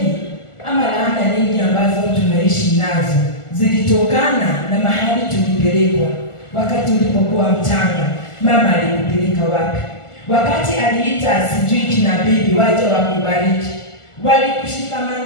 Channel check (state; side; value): late; right; 1.4 ms